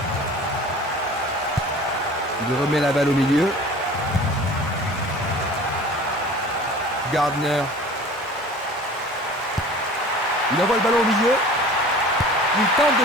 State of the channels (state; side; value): normal; both; correlation 0.43